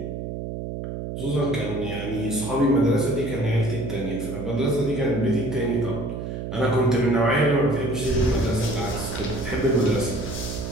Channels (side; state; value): right; noise; hum, 6 dB below the sound